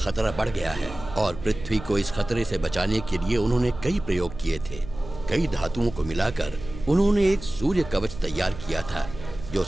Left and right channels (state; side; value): noise; right; hum, 13 dB below the sound